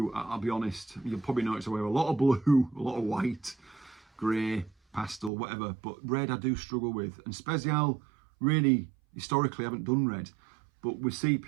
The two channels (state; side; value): drops out; left; at 5.3 s